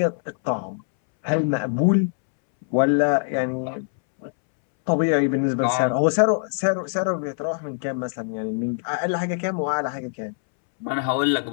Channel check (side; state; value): right; silent; 63 dB below the other